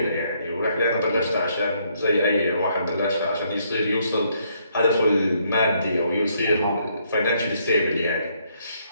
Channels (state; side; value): inverted; both; correlation -0.71